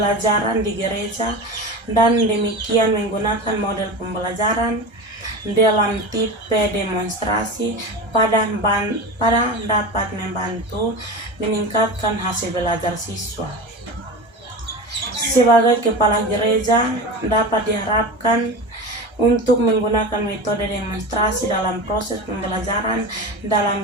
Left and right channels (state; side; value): late; left; 1.3 ms